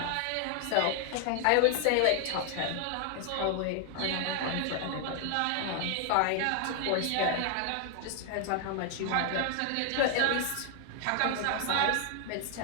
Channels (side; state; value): both; different; correlation 0.00